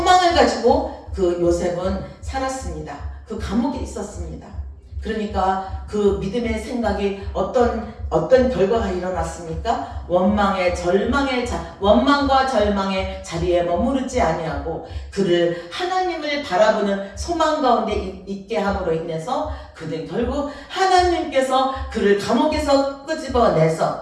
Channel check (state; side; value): identical; both; correlation 1.00